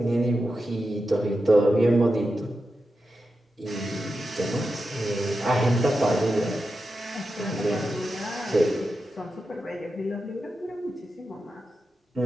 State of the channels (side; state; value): both; normal; correlation 0.90